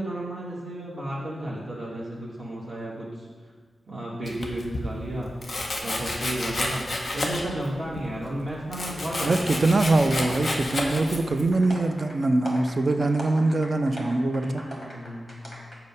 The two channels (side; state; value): both; normal; correlation 0.93